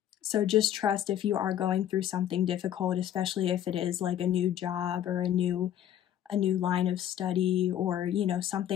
So just trust if you are going through something difficult, especially if it is like a new job or a new line of study, or, you know,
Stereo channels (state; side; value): quieter; right; 10.9 dB